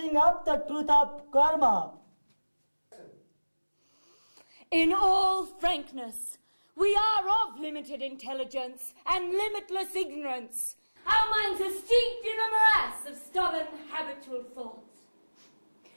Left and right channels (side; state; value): both; inverted; correlation -1.00